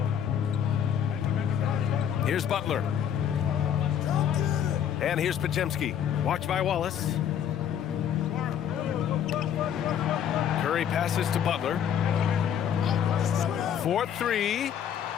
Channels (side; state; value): right; quieter; 9.2 dB